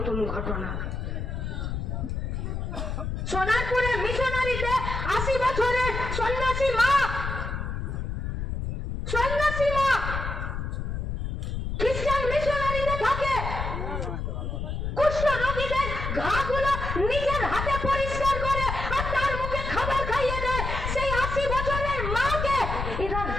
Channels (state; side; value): noise; left; rumble, 3 dB below the sound